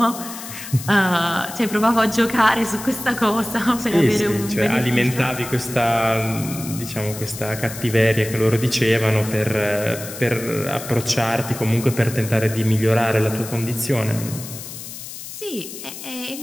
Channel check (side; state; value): left; noise; hiss, 11 dB below the sound